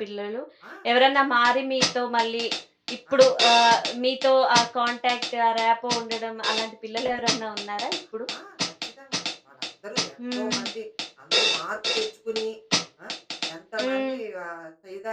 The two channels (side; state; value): both; identical; correlation 1.00